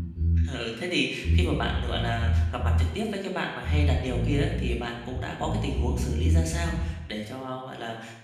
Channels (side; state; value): both; identical; correlation 1.00